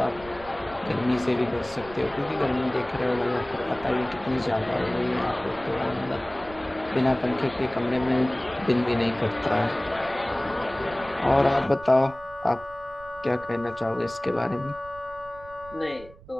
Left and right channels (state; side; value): noise; right; rumble, 20 dB below the sound